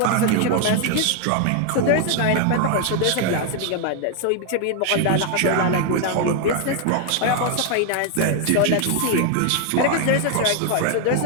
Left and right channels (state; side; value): different; both; correlation 0.00